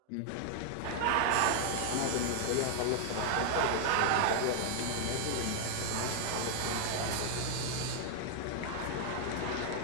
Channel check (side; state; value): both; different; correlation 0.00